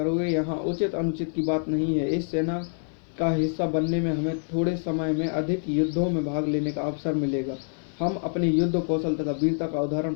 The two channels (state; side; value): silent; right; 59 dB below the other